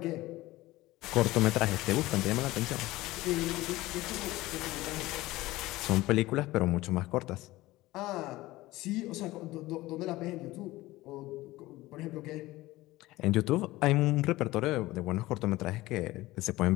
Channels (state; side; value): quieter; right; 18.3 dB